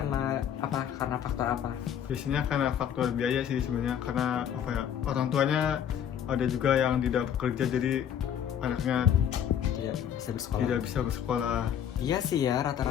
apa? Karena faktor apa? Biasanya karena faktor biaya sih sebenarnya, karena orang tuanya ada juga yang tidak bekerja, jadi anaknya Tidak bisa bersekolah. tidak bisa bersekolah. Iya sih ya,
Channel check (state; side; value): quieter; right; 9.2 dB